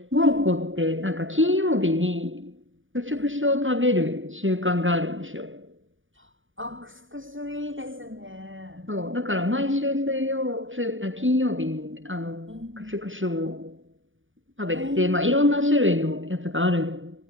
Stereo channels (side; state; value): left; late; 0.57 ms